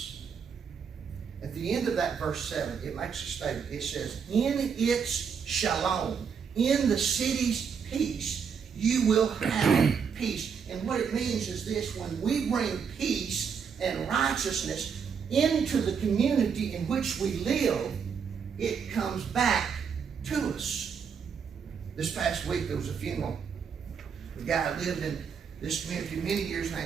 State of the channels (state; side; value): quieter; left; 6.5 dB